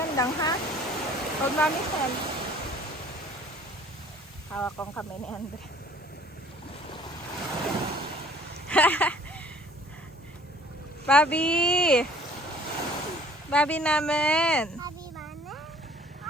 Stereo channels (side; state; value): both; normal; correlation 0.53